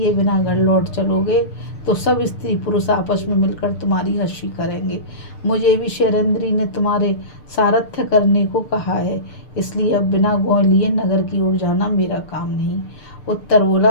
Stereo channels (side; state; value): right; late; 6.7 ms